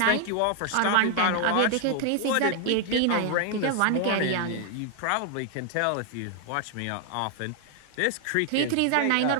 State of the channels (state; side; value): different; both; correlation 0.00